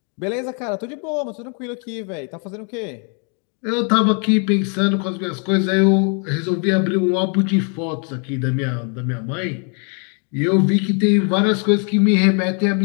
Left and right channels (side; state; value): right; quieter; 39.1 dB